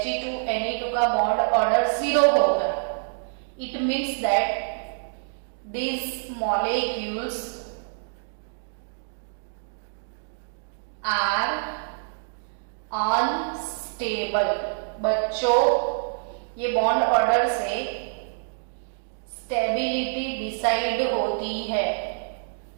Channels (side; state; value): left; silent; digital silence